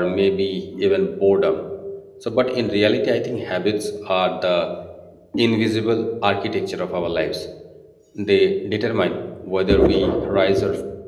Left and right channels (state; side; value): identical; both; correlation 1.00